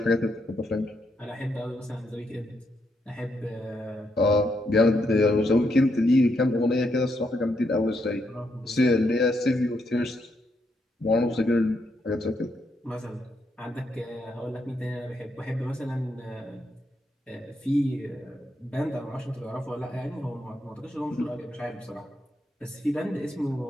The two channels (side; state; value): both; normal; correlation 0.79